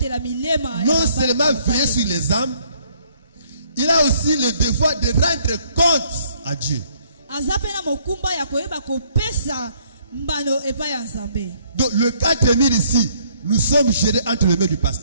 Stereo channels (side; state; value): both; inverted; correlation -0.65